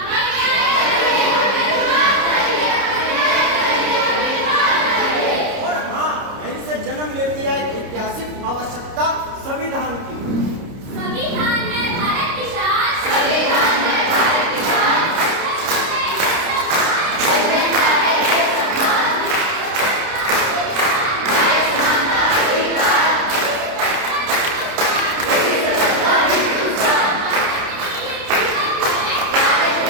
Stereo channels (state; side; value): late; left; 30 ms